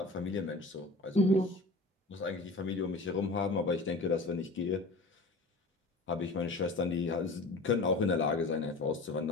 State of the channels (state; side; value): quieter; right; 3.1 dB